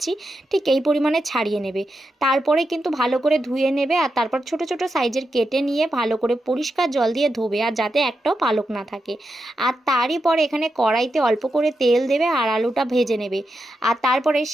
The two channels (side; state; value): both; normal; correlation 0.87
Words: ঠিক এই পরিমাণে ছাড়িয়ে নেবে। তারপরে কিন্তু ভালো করে ধুয়ে নেবে, আর তারপর ছোট ছোট সাইজের কেটে নিয়ে ভালো করে পরিষ্কার জল দিয়ে ধোবে, আর যাতে একটাও পালক না থাকে। আর তারই পরে এখানে কড়াইতে অল্প করে তেল দেবে আর আলুটা ভেজে নেবে। আর তারপরে